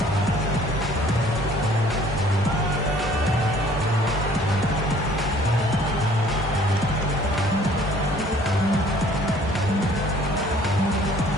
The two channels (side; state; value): both; normal; correlation 0.56